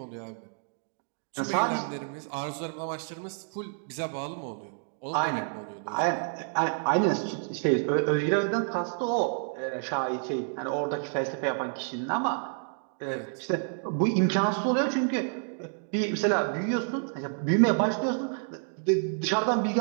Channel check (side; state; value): left; silent; 58 dB below the other